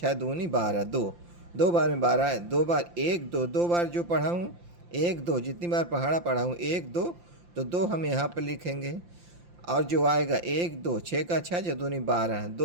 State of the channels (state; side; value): late; left; 5.8 ms